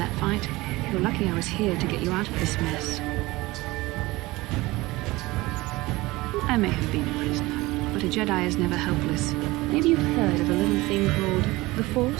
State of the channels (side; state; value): left; quieter; 20.6 dB